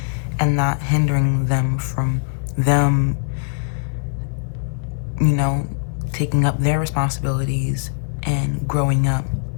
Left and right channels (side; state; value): right; silent; digital silence